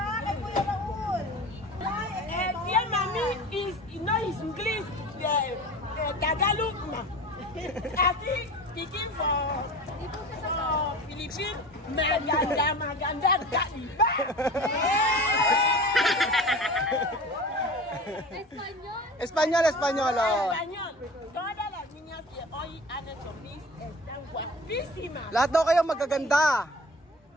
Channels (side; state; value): both; normal; correlation 0.37